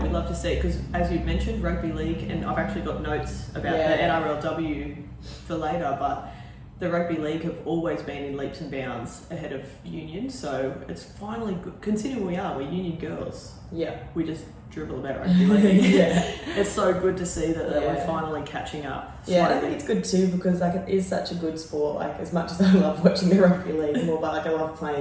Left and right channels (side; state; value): both; identical; correlation 1.00